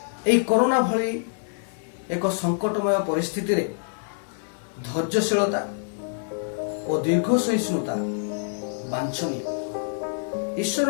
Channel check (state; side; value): silent; right; digital silence